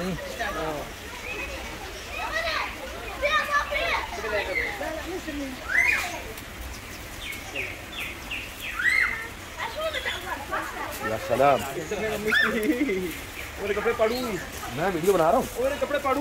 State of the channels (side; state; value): both; identical; correlation 1.00